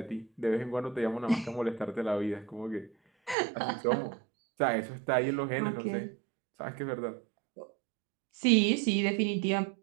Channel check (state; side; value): drops out; left; at 3.4 s